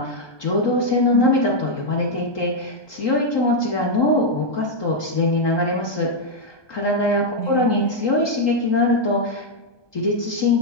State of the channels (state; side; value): late; right; 1.2 ms